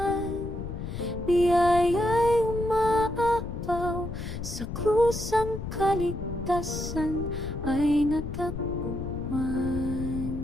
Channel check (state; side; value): noise; left; rumble, 7 dB below the sound